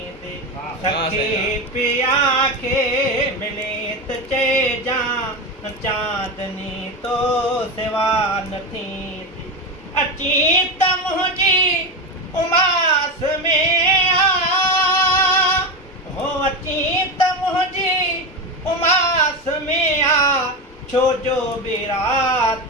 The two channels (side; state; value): both; normal; correlation 0.17